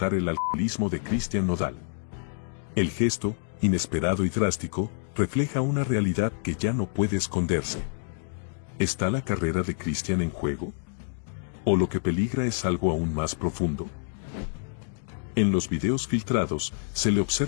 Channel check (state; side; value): silent; right; digital silence